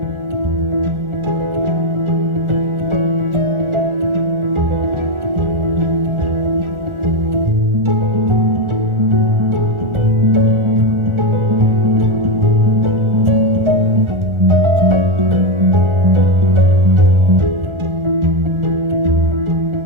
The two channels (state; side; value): late; left; 1.4 ms